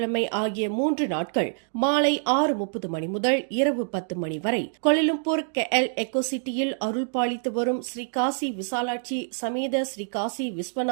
ஆகிய 3 நாட்கள் மாலை 6:30 மணி முதல் இரவு 10 மணி வரை கோலாலம்பூர் KL எக்கோசிட்டியில் அருள் பாலித்து வரும் ஸ்ரீ காசி விசாலாட்சி சமேத ஸ்ரீ காசி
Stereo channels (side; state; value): left; silent; digital silence